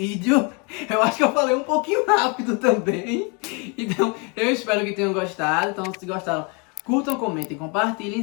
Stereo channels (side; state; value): right; quieter; 32.6 dB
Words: Eu acho que eu falei um pouquinho rápido também. Então, eu espero que tenham gostado. Então, se gostaram, curtam, comentem,